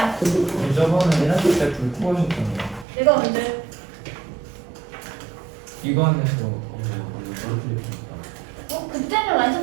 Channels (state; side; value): drops out; left; at 2.9 s